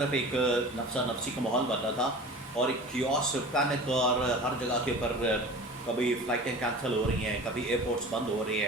ایک نفسا نفسی کا ماحول بن رہا تھا اور ایک کیوس، پینک، اور ہر جگہ کے اوپر کبھی فلائٹیں کینسل ہو رہی ہیں، کبھی ایئرپورٹس بند ہو رہی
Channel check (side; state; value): both; normal; correlation 0.38